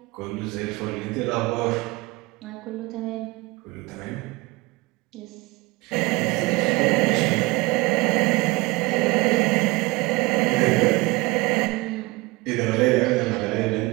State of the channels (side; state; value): left; quieter; 23.2 dB